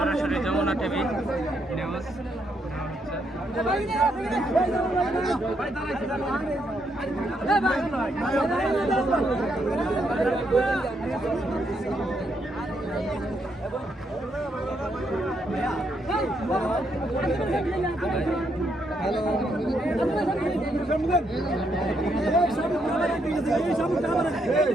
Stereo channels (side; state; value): both; normal; correlation 0.77